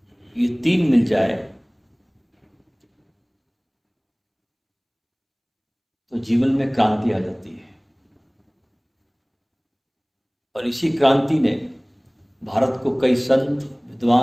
ये तीन मिल जाए तो जीवन में क्रांति आ जाती है। और इसी क्रांति ने भारत को कई संत,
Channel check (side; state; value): both; identical; correlation 1.00